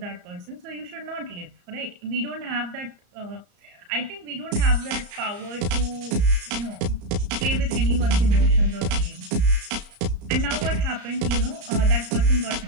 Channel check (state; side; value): late; left; 34 ms